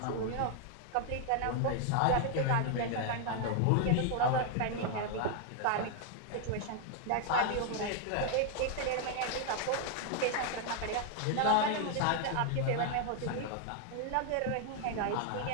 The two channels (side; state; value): both; different; correlation 0.00